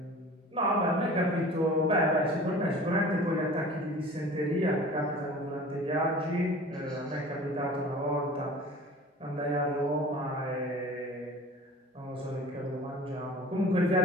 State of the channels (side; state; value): both; normal; correlation 0.42